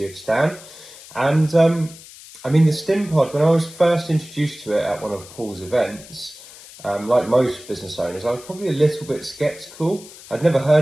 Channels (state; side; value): noise; left; hiss, 19 dB below the sound